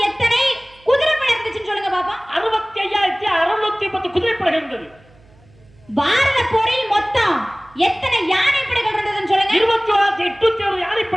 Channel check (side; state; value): right; noise; hum, 29 dB below the sound